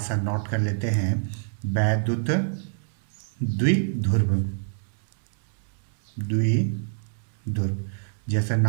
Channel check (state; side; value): silent; left; 61 dB below the other